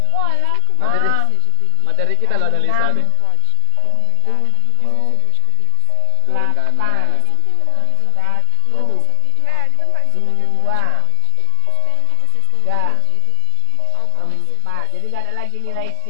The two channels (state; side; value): different; both; correlation 0.00